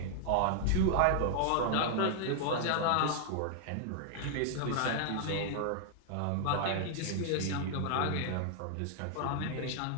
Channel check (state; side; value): different; both; correlation 0.00